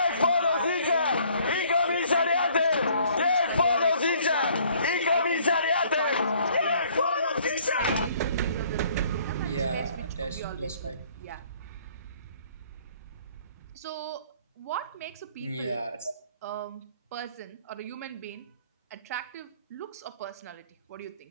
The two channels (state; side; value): inverted; both; correlation -0.59